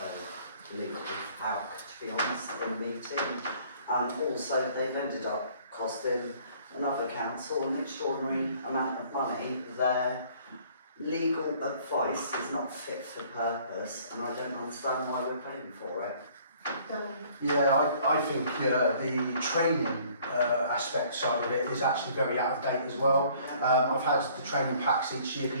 legal HALC, to be honest, in the meeting. And also they've ended up costing another council an extraordinary amount of money. Their legal advice is not fit for purpose, and I don't understand why we're paying for it. Yeah, I think the training aspect side of it is actually very out of date as well. I've had the training packs each year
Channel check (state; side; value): inverted; both; correlation -0.57